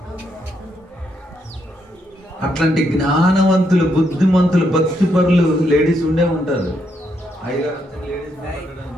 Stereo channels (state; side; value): normal; both; correlation 0.77